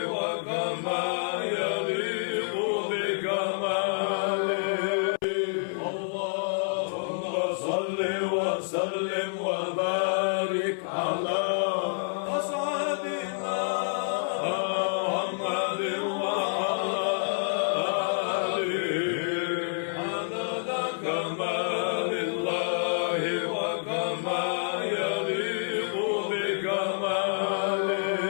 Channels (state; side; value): silent; right; 56 dB below the other